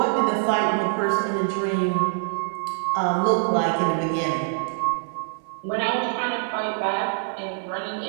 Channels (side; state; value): left; silent; digital silence